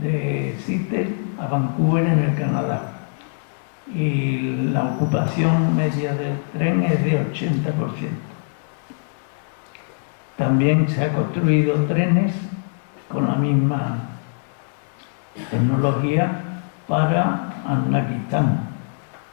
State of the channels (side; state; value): right; silent; digital silence